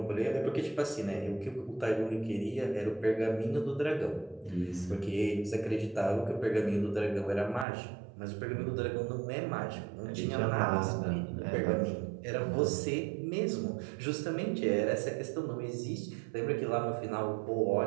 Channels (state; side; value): drops out; left; at 7.7 s